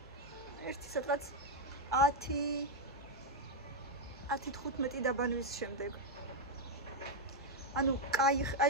ერთი სადღაც 10-15 დაბანვის შემდეგ. ანუ კაი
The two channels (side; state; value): both; normal; correlation 0.01